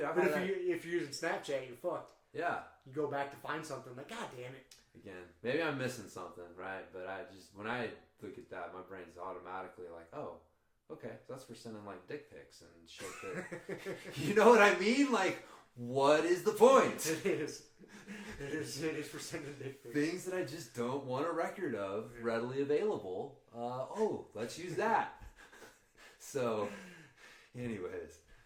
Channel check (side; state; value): both; identical; correlation 1.00